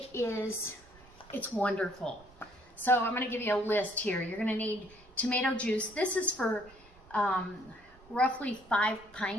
wonderful. So I'm going to give you a list here. You're going to need tomato juice. This is for roughly 5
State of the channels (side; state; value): right; noise; rumble, 25 dB below the sound